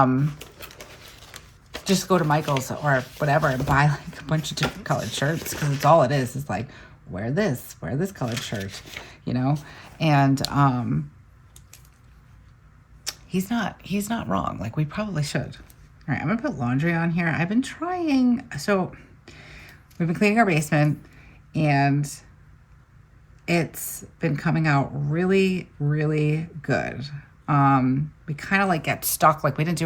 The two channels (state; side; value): identical; both; correlation 1.00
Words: just go to Michael's or whatever and buy like a bunch of different colored shirts, because it's all it is like, wear this colored shirt, you know. And he's not wrong. Like, we probably should. All right, I'm gonna put laundry on here. I've been trying, so we've been cleaning our basement, and it's been coming out really, really good. We kind of like get stuck, like we didn't do